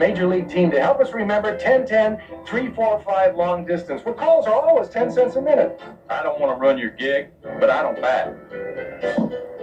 league team to help us remember 10-10, 3-4-5 long distance, where calls are always 10 cents a minute. I don't want to run your gig, but I don't bat.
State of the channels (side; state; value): both; identical; correlation 1.00